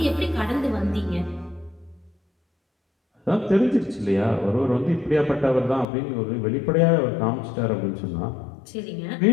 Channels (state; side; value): drops out; right; at 5.9 s